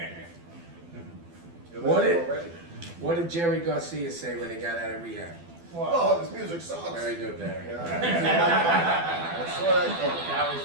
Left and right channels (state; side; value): late; left; 12 ms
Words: What did Jerry Garcia say when he got out of rehab? Oh, this music sucks. Very good, Barry. I saw that coming. That was